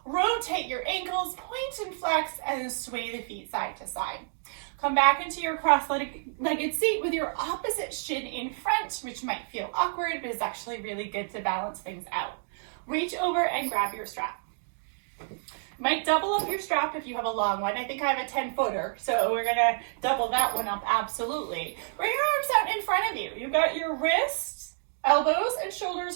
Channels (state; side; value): silent; left; digital silence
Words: Rotate your ankles, point and flex, and sway the feet side to side. Come back into your cross-legged seat with your opposite shin in front, which might feel awkward, but is actually really good to balance things out. Reach over and grab your strap. Might double up your strap if you have a long one. I think I have a 10-footer, so we're gonna double that one up, absolutely. Bring your arms out in front of you. You've got your wrists, elbows, and